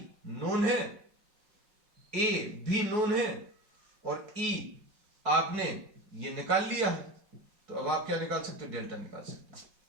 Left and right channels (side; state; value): left; late; 4.7 ms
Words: नोन है, A भी नोन है, और E आपने ये निकाल लिया है, तो अब आप क्या निकाल सकते हो, डेल्टा निकाल सकते हो।